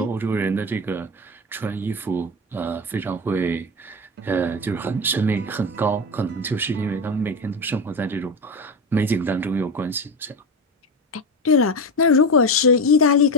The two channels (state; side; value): normal; both; correlation 0.20